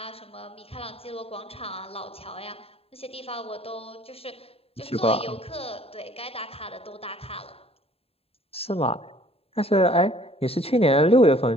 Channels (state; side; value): late; right; 0.28 ms